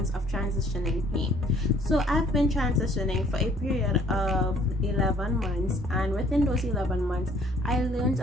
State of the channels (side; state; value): both; normal; correlation 0.59